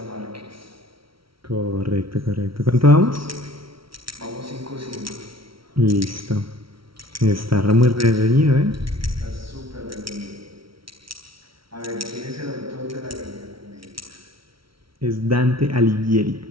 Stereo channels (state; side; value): late; left; 0.75 ms